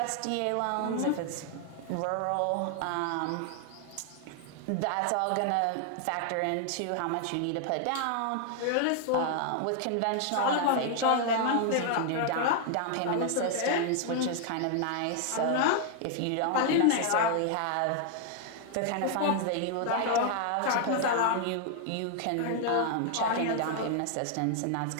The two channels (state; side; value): different; both; correlation 0.00